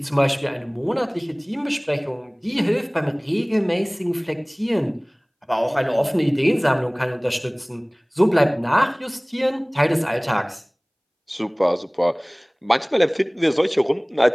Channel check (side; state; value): both; identical; correlation 1.00